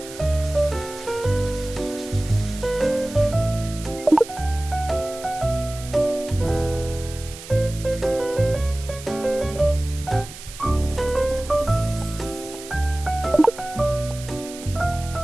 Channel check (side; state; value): right; noise; hiss, 15 dB below the sound